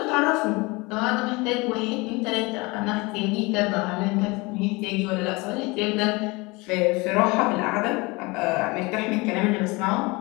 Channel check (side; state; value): right; quieter; 25.1 dB